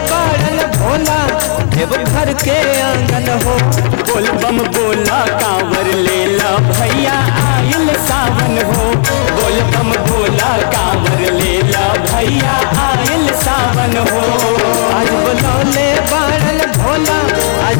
बारन भोला देव घर के आंगन हो बोल बम बोला कांवर लेला भैया आयल सावन हो। बोल बम बोला कांवर लेला भैया आयल सावन हो। आज बोलौले बारन भोला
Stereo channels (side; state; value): right; silent; digital silence